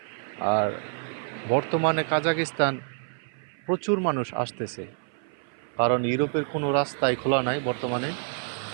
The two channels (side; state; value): left; silent; 57 dB below the other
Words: আর বর্তমানে কাজাকিস্তান প্রচুর মানুষ আসতেছে, কারণ ইউরোপের কোনো রাস্তাই খোলা নাই বর্তমানে।